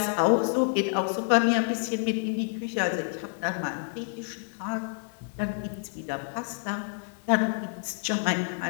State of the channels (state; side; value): silent; right; digital silence